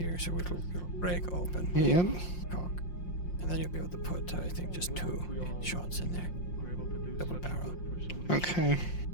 so it'll break open. Yep. Cock. And then you'll be able to put, I think, just 2 shots in there. Double barrel. Okay.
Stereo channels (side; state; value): right; late; 5.6 ms